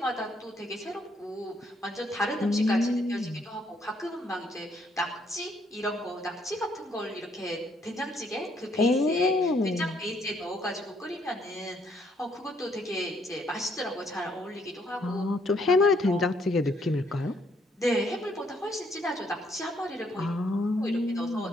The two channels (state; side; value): normal; both; correlation 0.69